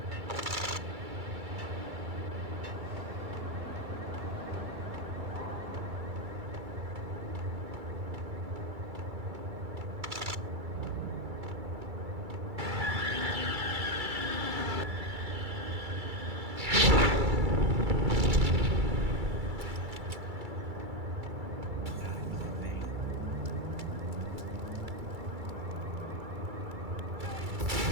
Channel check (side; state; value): left; late; 2.3 ms